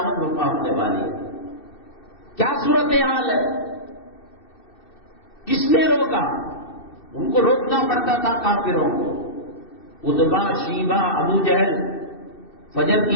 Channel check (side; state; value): right; late; 2.6 ms